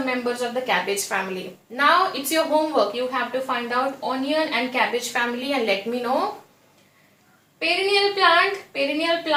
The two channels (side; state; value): both; identical; correlation 1.00